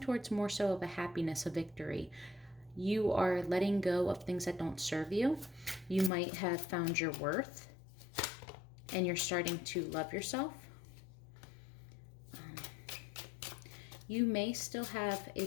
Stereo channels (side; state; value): right; drops out; at 6.1 s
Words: more so of a happiness, a victory. You are letting go of things that don't serve you. You might have found your worth, and you're starting to love yourself. You may still have